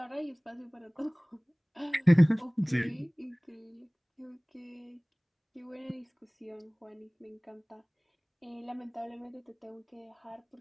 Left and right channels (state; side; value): identical; both; correlation 1.00